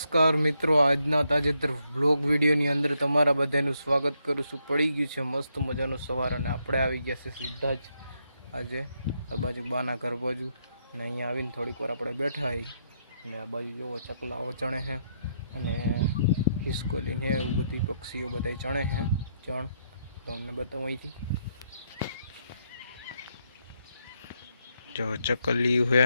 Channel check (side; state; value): both; inverted; correlation -0.77